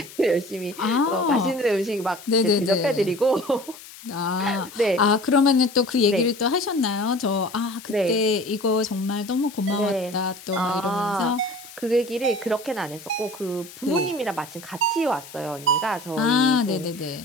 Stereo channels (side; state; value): left; noise; hiss, 17 dB below the sound